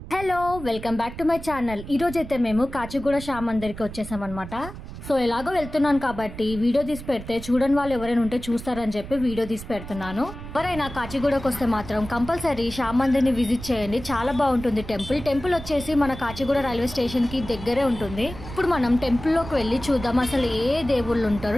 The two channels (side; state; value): right; noise; rumble, 12 dB below the sound